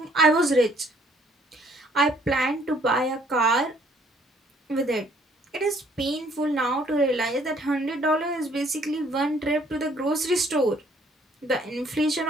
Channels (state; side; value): normal; both; correlation 0.62